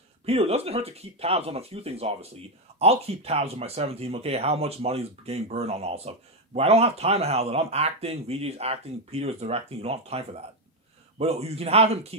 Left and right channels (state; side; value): normal; both; correlation 0.06